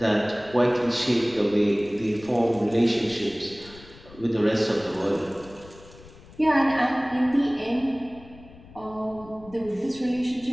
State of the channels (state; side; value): noise; left; rumble, 21 dB below the sound